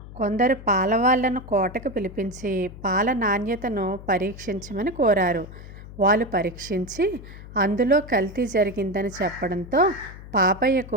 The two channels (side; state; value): left; noise; hum, 15 dB below the sound